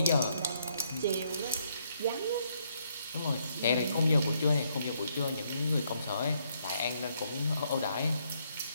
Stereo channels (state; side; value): inverted; both; correlation -0.72